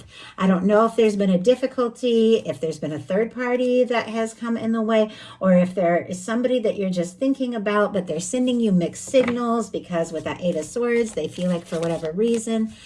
I don't know if there's been a difficulty, if there's been a third party that has come in the way, or if there is somebody that you're just thinking about, but they're sending you mixed signals because with that 8 of Swords, they feel like for whatever reason,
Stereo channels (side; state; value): both; identical; correlation 1.00